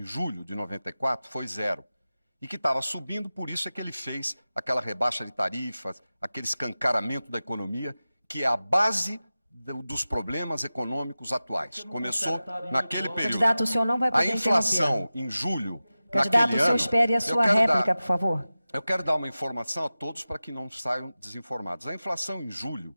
julho de 94 foi 0. E que estava subindo, por isso é que ele fez aquela rebaixa de tarifas, aquele escancaramento da economia, que é a base dos problemas econômicos atuais. Começou naquele período. Candidato, o senhor não vai poder a inflação em julho, candidato, o senhor espere a sua réplica, por favor. Eu quero dar uma informação a todos para que não saiam desinformados. A inflação em julho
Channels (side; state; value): both; inverted; correlation -0.95